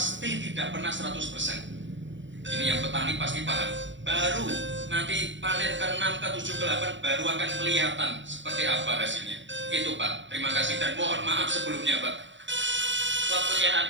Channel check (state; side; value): late; left; 0.54 ms